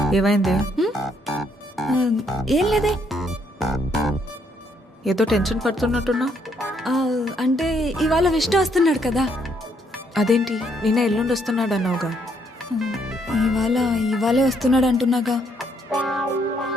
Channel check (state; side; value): normal; both; correlation 0.71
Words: ఏమైంది? ఆ, ఏం లేదే. ఏదో టెన్షన్ పడుతున్నట్టున్నావు. ఆ, అంటే ఇవాళ విష్ణు వస్తున్నాడు కదా. అదేంటి నిన్న ఎల్లుండి వస్తున్నాడు అన్నావుగా. ఇవాళే వస్తున్నాడు అంటున్నాగా.